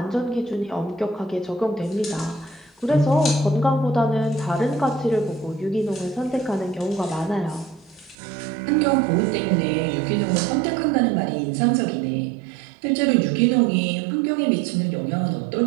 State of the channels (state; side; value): drops out; left; at 8.2 s